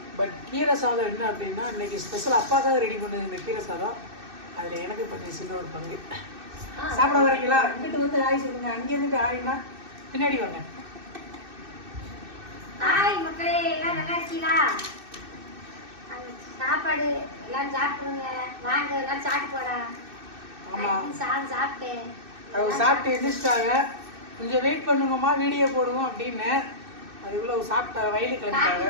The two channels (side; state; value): left; late; 2.6 ms